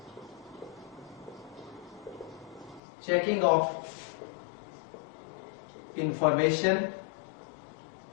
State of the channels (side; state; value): right; drops out; at 2.8 s